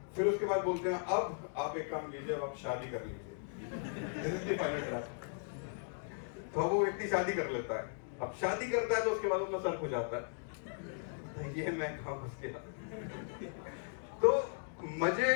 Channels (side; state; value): right; silent; digital silence